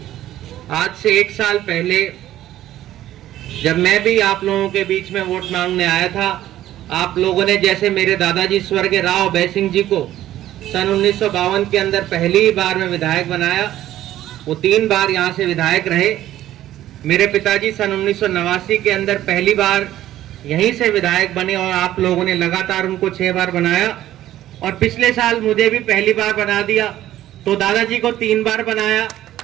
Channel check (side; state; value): left; quieter; 13.4 dB